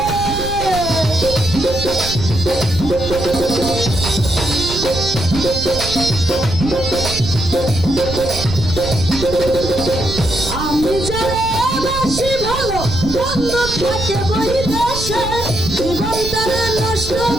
আমি জানে বেশি ভালো বন্ধু থাকে বৈদেশে, জীবন করে নষ্ট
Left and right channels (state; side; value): noise; right; rumble, 8 dB below the sound